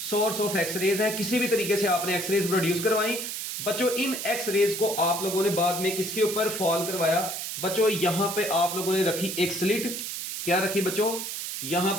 सोर्स ऑफ एक्स रेज है। किसी भी तरीके से आपने एक्स रेज प्रोड्यूस करवाई बच्चों। इन एक्स रेज को आप लोगों ने बाद में किसके ऊपर फॉल करवाया बच्चों, यहां पे आप लोगों ने रखी एक स्लिट। क्या रखी बच्चों, यहां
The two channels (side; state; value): right; noise; hiss, 5 dB below the sound